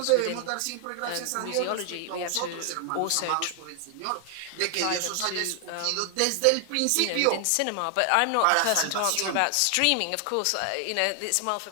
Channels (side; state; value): both; different; correlation 0.00